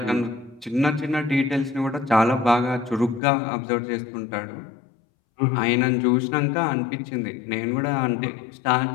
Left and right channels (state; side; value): drops out; right; at 3.2 s